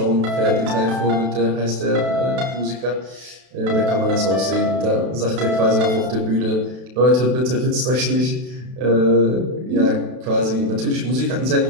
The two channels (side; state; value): left; late; 32 ms